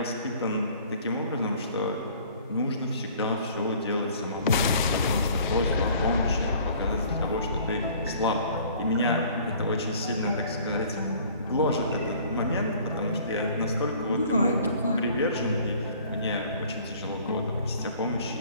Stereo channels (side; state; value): both; inverted; correlation -0.53